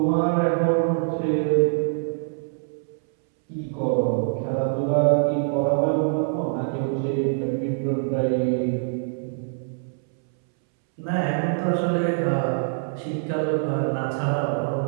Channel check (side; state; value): left; silent; 62 dB below the other